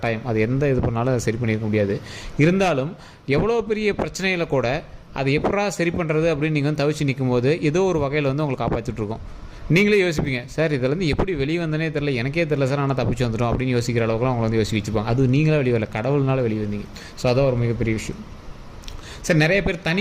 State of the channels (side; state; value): both; identical; correlation 1.00